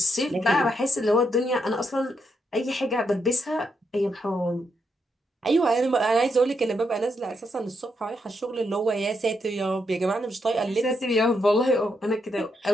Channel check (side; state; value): both; normal; correlation 0.80